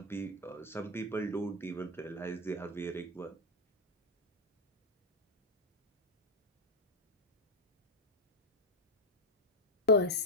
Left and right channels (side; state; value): both; normal; correlation 0.04